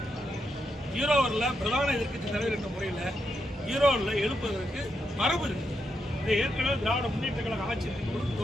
ஈரோவில் பிரதான எதிர்க்கட்சி தலைவர் என்ற முறையில் ஈரோவில் எழுப்புவதற்கு மரபு இருக்கு. இதை ஏற்கனவே திராவிட முன்னேற்ற கழக ஆட்சி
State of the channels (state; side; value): normal; both; correlation 0.82